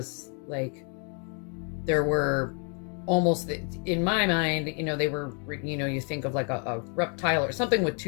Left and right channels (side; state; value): right; quieter; 39.3 dB